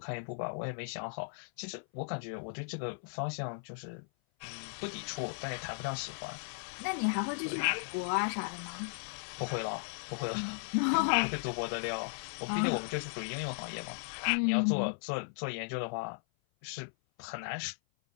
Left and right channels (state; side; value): silent; right; 54 dB below the other